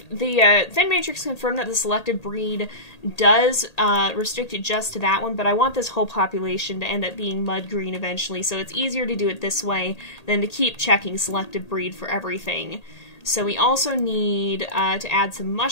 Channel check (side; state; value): right; late; 1.8 ms